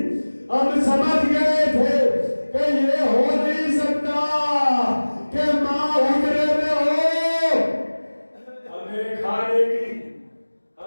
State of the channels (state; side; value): inverted; both; correlation -1.00